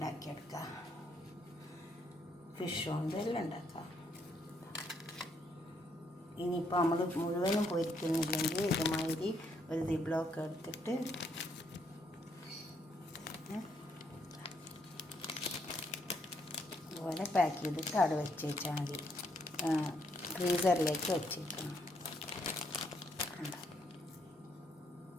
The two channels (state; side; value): normal; both; correlation 0.73